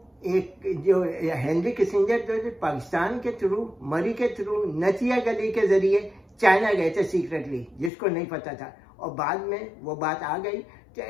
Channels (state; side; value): drops out; right; at 7.9 s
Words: एक जो हेनरी किसिंजर जो पाकिस्तान के थ्रू, मरी के थ्रू, नथिया गली के जरिए चाइना गए थे सीक्रेटली, जिसको नहीं पता था, और बाद में वो बात आ गई। तो